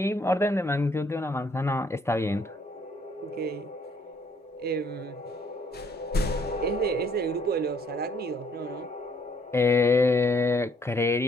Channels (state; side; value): normal; both; correlation 0.65